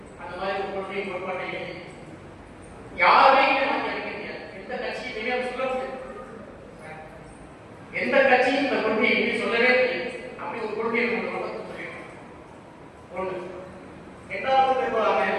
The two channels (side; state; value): both; identical; correlation 1.00